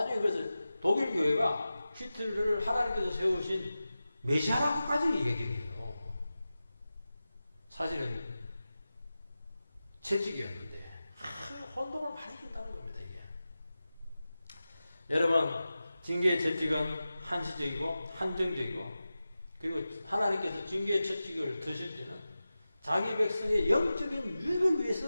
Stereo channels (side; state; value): both; inverted; correlation -0.94